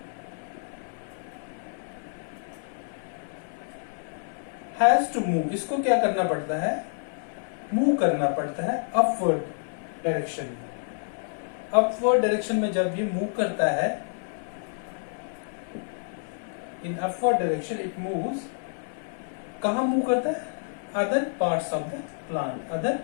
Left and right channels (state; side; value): silent; right; digital silence